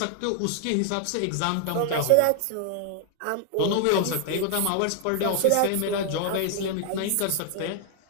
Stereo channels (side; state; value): both; different; correlation 0.00